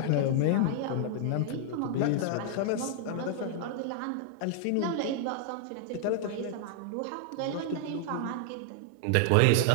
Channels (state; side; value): different; both; correlation 0.00